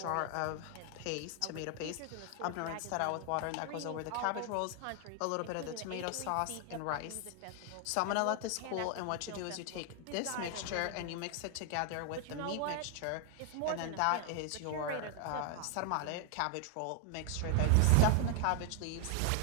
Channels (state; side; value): different; both; correlation 0.00